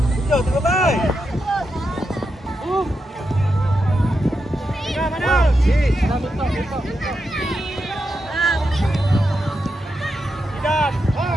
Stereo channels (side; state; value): both; normal; correlation 0.86